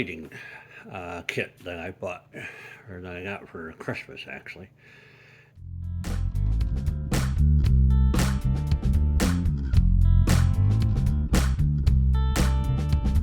kit that I bought, or that I got for Christmas actually.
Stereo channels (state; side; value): identical; both; correlation 1.00